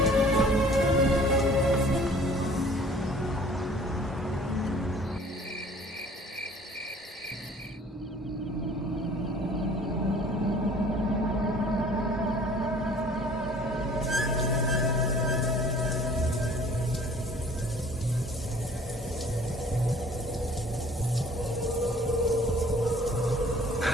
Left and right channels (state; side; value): normal; both; correlation 0.52